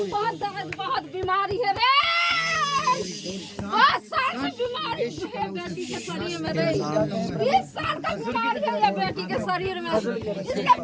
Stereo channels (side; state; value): both; identical; correlation 1.00